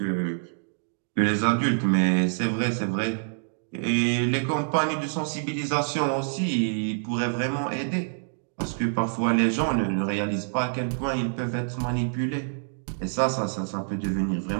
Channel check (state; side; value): silent; left; digital silence